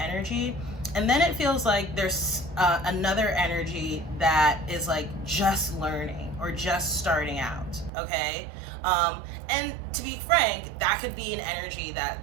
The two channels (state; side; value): drops out; left; at 7.9 s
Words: And then it feels like there's another energy that is like just learning or just starting out, okay? And to be frank, that could be an energy that